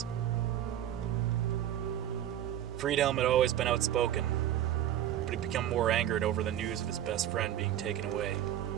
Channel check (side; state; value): left; quieter; 11.5 dB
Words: Friedhelm had always been outspoken, but he'd become more angered over the news of his best friend being taken away.